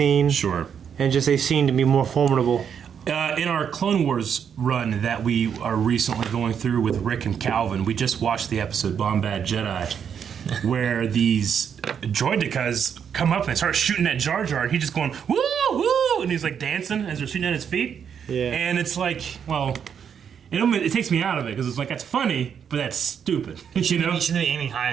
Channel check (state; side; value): quieter; left; 7.7 dB